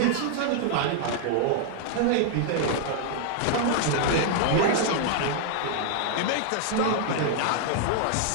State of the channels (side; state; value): both; different; correlation -0.01